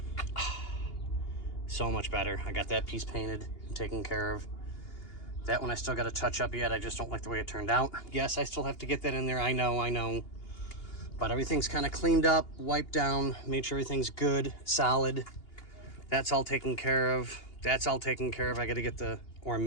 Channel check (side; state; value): right; late; 2.8 ms